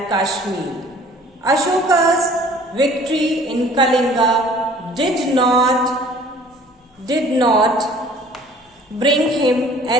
Kashmir. Ashoka's victory in Kalinga did not bring him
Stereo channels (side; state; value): both; normal; correlation 0.52